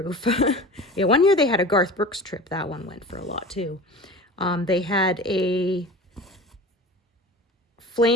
Yeah, one year they had a Garth Brooks trip. That one went for a lot too. They had a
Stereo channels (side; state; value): both; normal; correlation 0.36